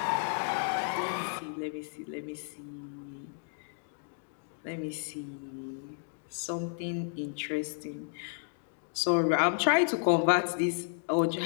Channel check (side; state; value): right; silent; digital silence